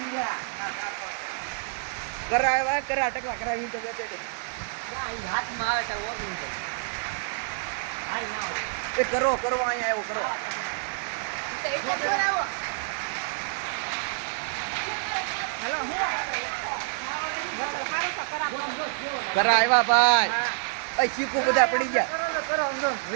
કરાવ્યા કરા ટકલા કરાવી તો બેઠે હાથમાં આવે તો હાલ ના એ કરો અહીંયા એવો કરો કરા આવ્યા ભાઈ અ ચીકુ બધા પડી ગયા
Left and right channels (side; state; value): left; silent; digital silence